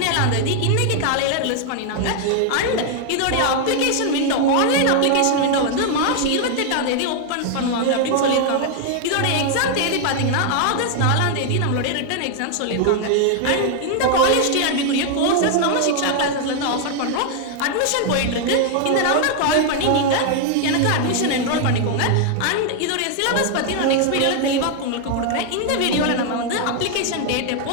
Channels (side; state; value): both; different; correlation 0.00